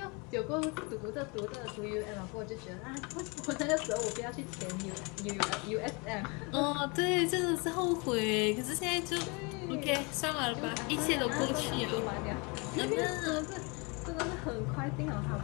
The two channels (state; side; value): quieter; right; 30.1 dB